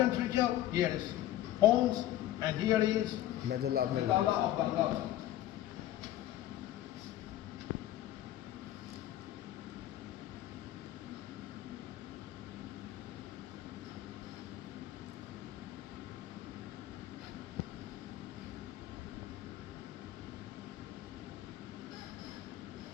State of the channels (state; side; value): quieter; right; 13.6 dB